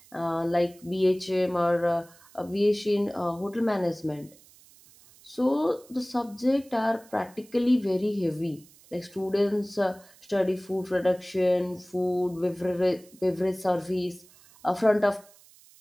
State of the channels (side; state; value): right; noise; hiss, 26 dB below the sound